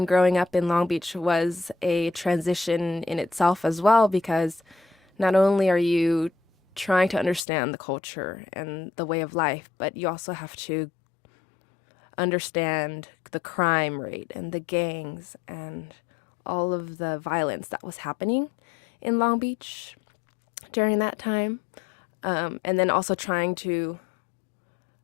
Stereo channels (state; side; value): drops out; right; at 7.5 s